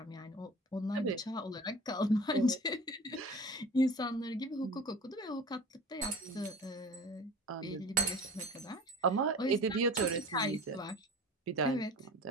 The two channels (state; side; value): normal; both; correlation 0.39